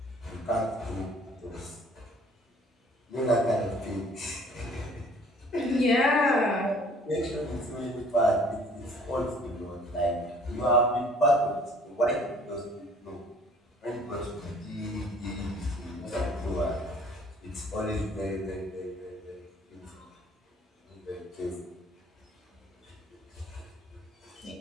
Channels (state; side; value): normal; both; correlation 0.55